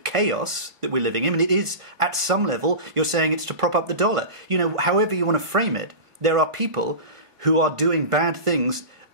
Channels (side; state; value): left; late; 1.4 ms